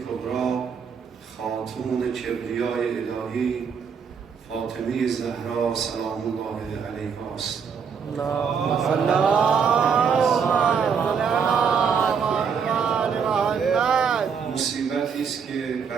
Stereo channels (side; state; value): left; quieter; 6.5 dB